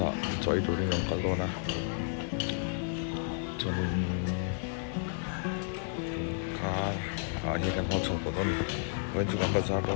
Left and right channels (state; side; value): silent; right; digital silence